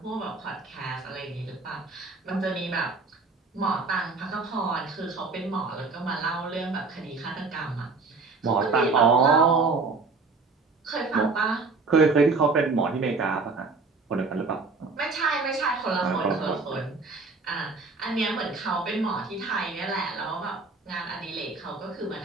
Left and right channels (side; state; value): left; quieter; 4.0 dB